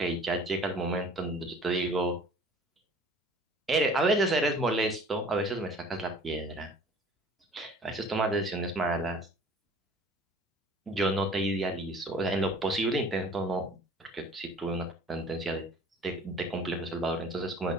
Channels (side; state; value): both; normal; correlation 0.49